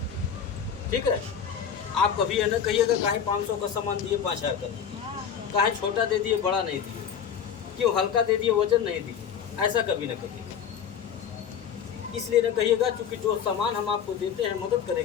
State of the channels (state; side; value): quieter; right; 7.8 dB